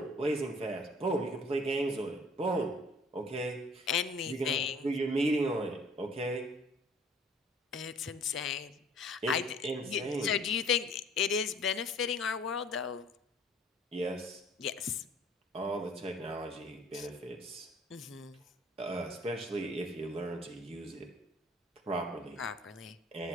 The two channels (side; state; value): both; normal; correlation 0.53